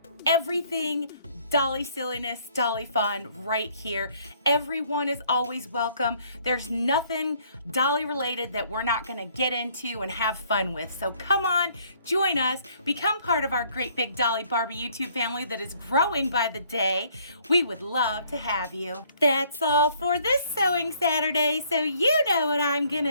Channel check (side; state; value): both; inverted; correlation -0.62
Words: everything Dolly silliness, Dolly fun right here. Everyone is always welcome. There's nothing Dolly related that we're not gonna get into and have fun with. So come on, join us, become part of our great big Dolly Barbie YouTube family that is growing by the day. We would love to have you. That's all for this Sewing Saturday, so you know what I'm